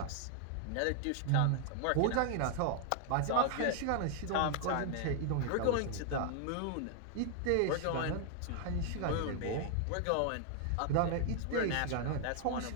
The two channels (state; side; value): different; both; correlation 0.00